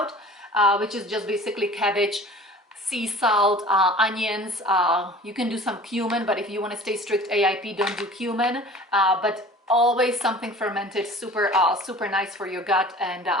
which is just basically cabbage, sea salt, onions. You can do some cumin, but if you want to stay strict AIP, don't do cumin. But always something fermented, super nice for your gut, and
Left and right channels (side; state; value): both; normal; correlation 0.44